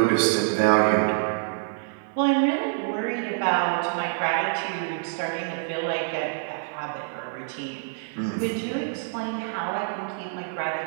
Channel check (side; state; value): left; silent; 61 dB below the other